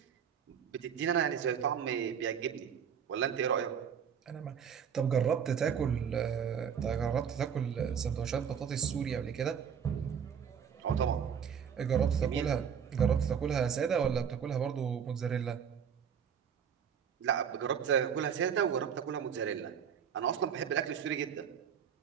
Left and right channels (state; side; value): quieter; left; 7.6 dB